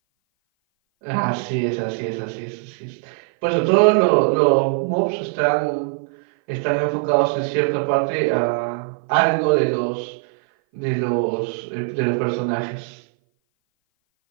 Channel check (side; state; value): left; silent; 57 dB below the other